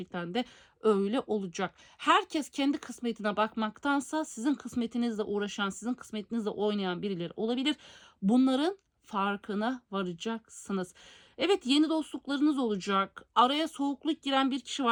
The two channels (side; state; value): both; identical; correlation 1.00